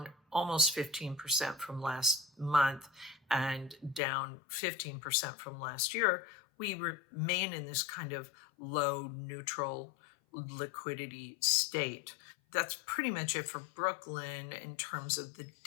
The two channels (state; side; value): drops out; right; at 4.0 s